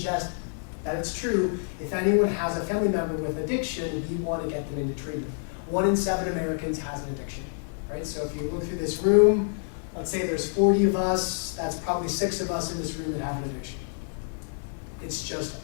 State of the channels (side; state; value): right; silent; digital silence